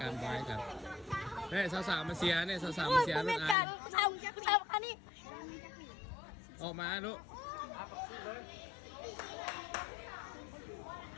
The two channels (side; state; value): right; drops out; at 3.6 s